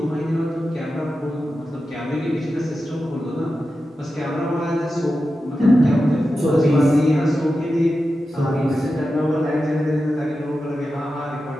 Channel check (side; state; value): both; normal; correlation 0.91